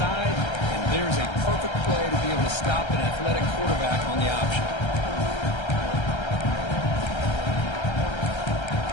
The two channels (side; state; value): right; late; 1.3 ms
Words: and there's a perfect play to be able to stop an athletic quarterback on the option.